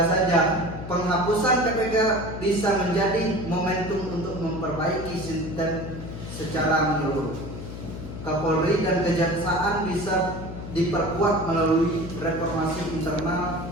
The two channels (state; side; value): noise; left; hum, 9 dB below the sound